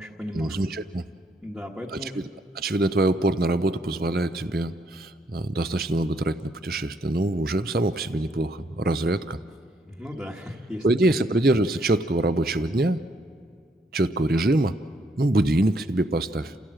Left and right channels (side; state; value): both; normal; correlation 0.71